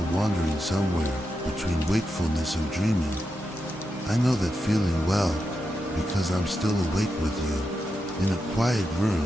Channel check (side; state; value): both; normal; correlation 0.87